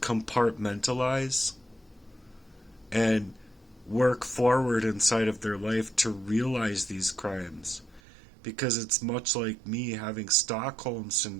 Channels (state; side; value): drops out; left; at 8.0 s